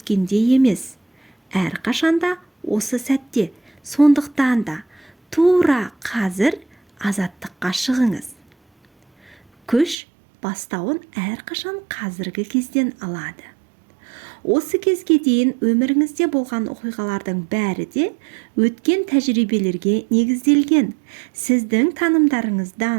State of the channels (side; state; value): left; drops out; at 10.0 s